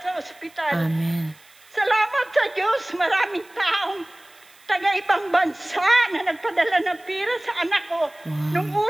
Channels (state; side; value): noise; right; hiss, 27 dB below the sound